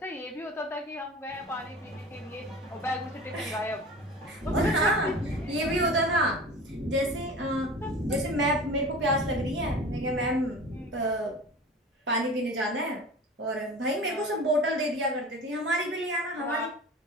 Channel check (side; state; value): both; normal; correlation 0.37